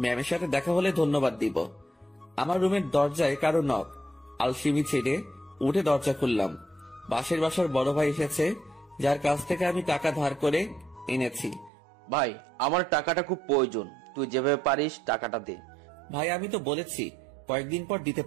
ম্যামের সাথে দেখা হলে ধন্যবাদ দিব। আমার রুমের দরজায় কারো নক। আলসিমি ছেড়ে উঠে দরজা খুললাম। বাসার বড় ভাই এসেছে, যার কাছ থেকে আমি টাকা ধার করে এনেছি। ভাই আমার টাকাটা খুব প্রয়োজন, তুই যেভাবে পারিস টাকাটা দে। ভাই আমি তো বলেছি কয়েকদিন পর দিতে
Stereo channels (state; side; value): drops out; left; at 11.7 s